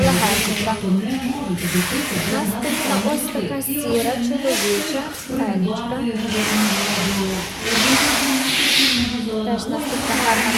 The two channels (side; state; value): both; identical; correlation 1.00